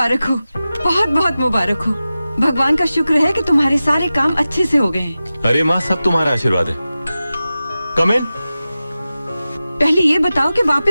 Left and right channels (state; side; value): inverted; both; correlation -0.95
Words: हो, बहुत बहुत मुबारक हो। भगवान का शुक्र है कि तुम्हारे सारे काम अच्छे से हो गए हैं। अरे माँ, सब तुम्हारा आशीर्वाद है। कम इन। पहले ये बताओ कि